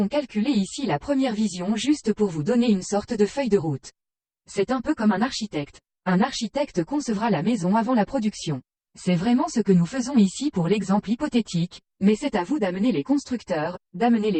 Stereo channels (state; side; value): identical; both; correlation 1.00